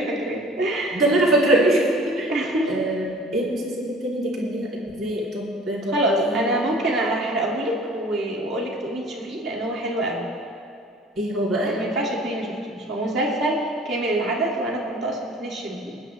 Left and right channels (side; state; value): both; normal; correlation 0.47